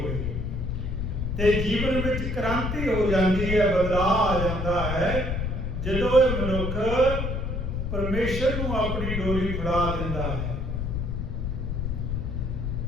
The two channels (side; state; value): left; noise; rumble, 2 dB below the sound